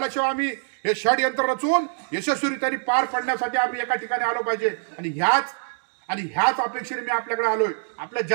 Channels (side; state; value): left; silent; digital silence